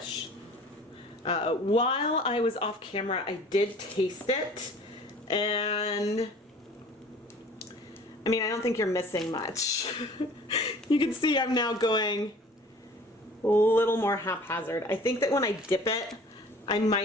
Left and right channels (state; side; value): normal; both; correlation 0.47